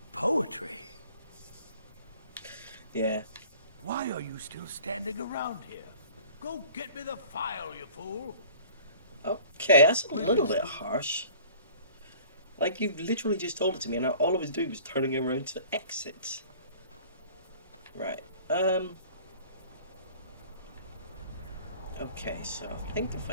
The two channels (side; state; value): both; inverted; correlation -0.47